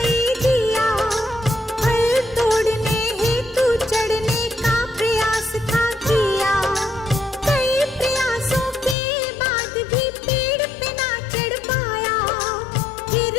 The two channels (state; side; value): drops out; right; at 9.0 s